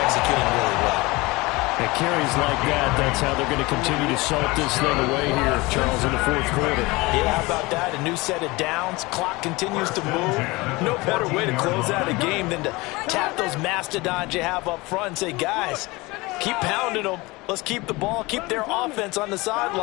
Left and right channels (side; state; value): right; quieter; 22.8 dB